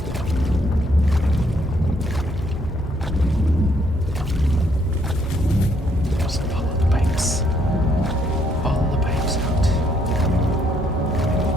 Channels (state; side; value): normal; both; correlation 0.70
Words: Just follow the pipes. Follow the pipes out.